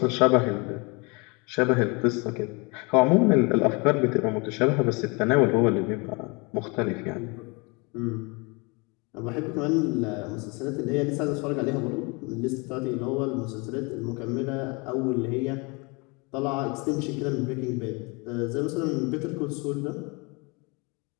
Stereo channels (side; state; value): right; quieter; 29.2 dB